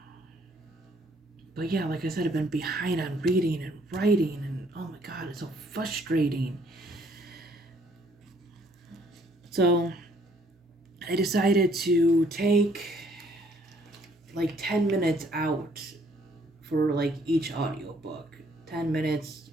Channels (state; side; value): normal; both; correlation 0.64